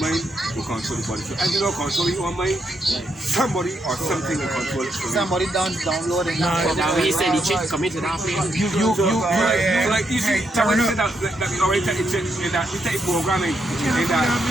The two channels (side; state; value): both; normal; correlation 0.79